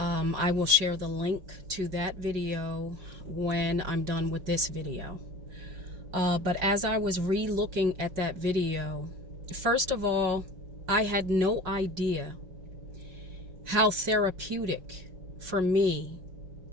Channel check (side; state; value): left; late; 5.4 ms